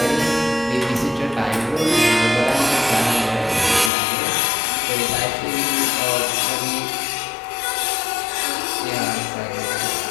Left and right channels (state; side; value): drops out; right; at 3.9 s